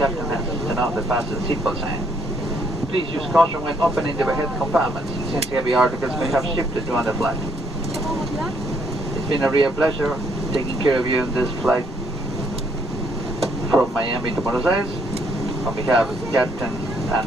has turned on the fasten seatbelt sign. Please use caution when opening the overhead compartments, since heavy articles may have shifted during the flight. It's been a real pleasure taking care of you in this flight from Miami to Buenos Aires. On behalf of the captain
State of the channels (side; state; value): both; normal; correlation 0.69